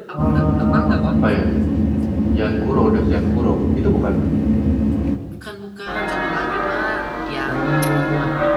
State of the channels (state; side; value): identical; both; correlation 1.00